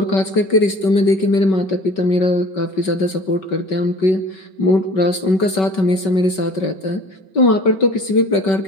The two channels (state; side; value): late; right; 5.3 ms